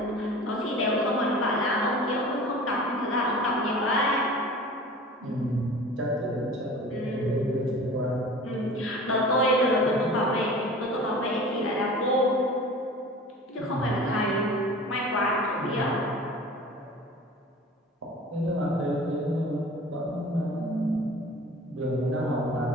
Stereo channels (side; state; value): both; normal; correlation 0.40